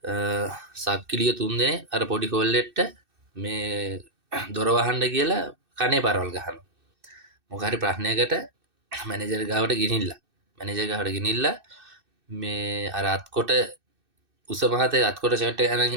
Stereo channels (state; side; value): late; left; 2.6 ms